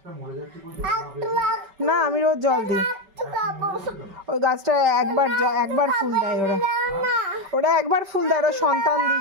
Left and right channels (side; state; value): left; late; 5.2 ms